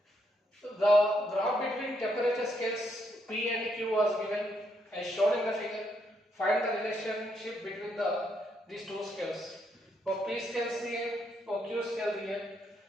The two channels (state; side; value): normal; both; correlation 0.76